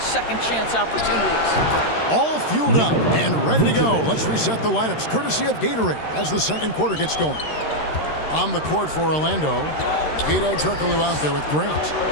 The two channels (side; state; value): right; late; 13 ms